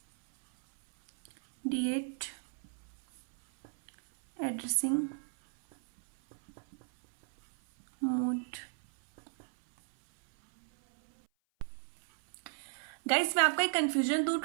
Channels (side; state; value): left; silent; 55 dB below the other